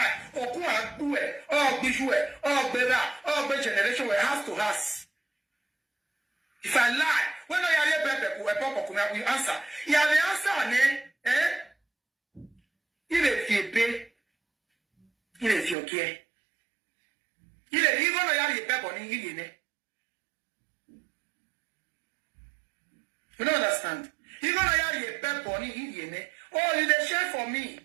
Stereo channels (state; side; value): drops out; left; at 15.8 s